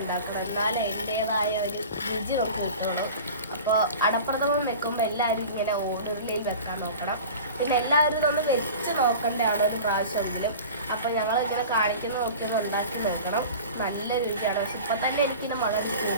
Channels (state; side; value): inverted; both; correlation -0.37